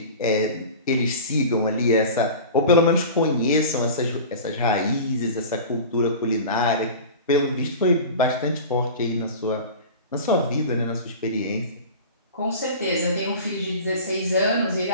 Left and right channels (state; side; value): inverted; both; correlation -0.35